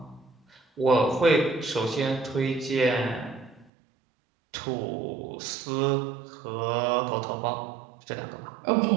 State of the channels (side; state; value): left; drops out; at 3.7 s